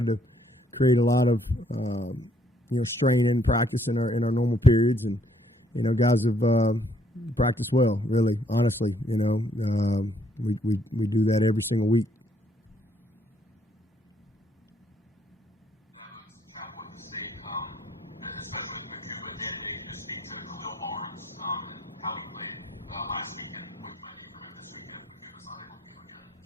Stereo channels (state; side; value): normal; both; correlation 0.67